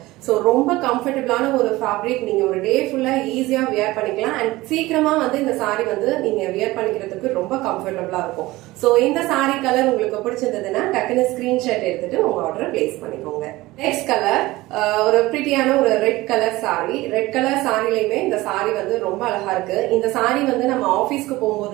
So ரொம்ப கம்ஃபர்டபிளான ஒரு ஃபேப்ரிக். நீங்க ஒரு டே ஃபுல்லா ஈஸியா வியர் பண்ணிக்கலாம். அண்ட் சீக்கிரமா வந்து இந்த சாரி வந்து நீங்க வியர் பண்ணிக்கிறதுக்கு ரொம்ப கம்ஃபர்டபிளா இருக்கும். சோ இந்த சாரி கலர் உங்களுக்கு பிடிச்சிருந்ததுன்னா டக்குனு ஸ்கிரீன்ஷாட் எடுத்துட்டு உங்க ஆர்டர் பிளேஸ் பண்ணிக்கோங்க. நெக்ஸ்ட் கலர் ஒரு பிரிட்டியான ஒரு red colour sari. Red colour சாரிலையுமே இந்த சாரி வந்து ரொம்ப அழகா இருக்கு. இந்த சாரி வந்து நம்ம ஆபீஸ்க்கு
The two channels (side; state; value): left; quieter; 19.1 dB